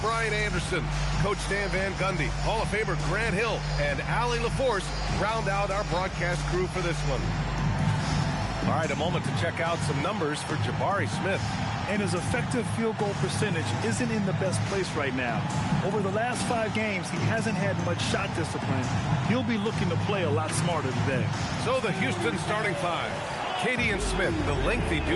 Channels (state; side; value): identical; both; correlation 1.00